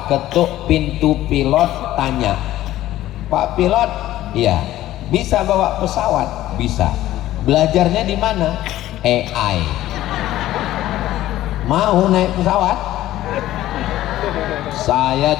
ketuk pintu pilot, tanya, Pak pilot, iya, bisa bawa pesawat? Bisa. Belajarnya di mana? AI. Mau naik pesawat? Saya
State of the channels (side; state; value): right; quieter; 14.5 dB